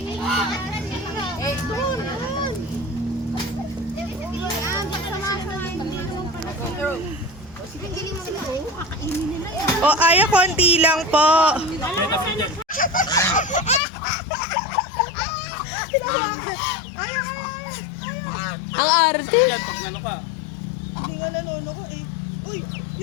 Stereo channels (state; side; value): drops out; right; at 13.8 s